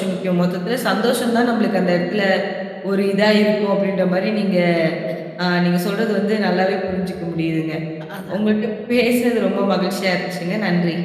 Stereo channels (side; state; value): both; identical; correlation 1.00